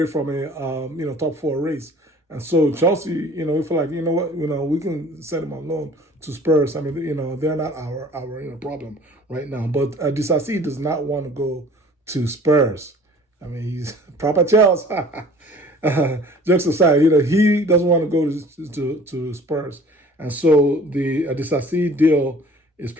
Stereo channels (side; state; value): both; normal; correlation 0.49